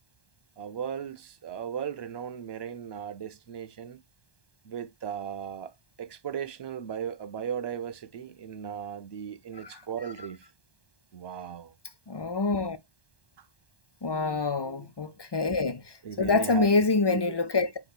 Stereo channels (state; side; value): late; right; 1.2 ms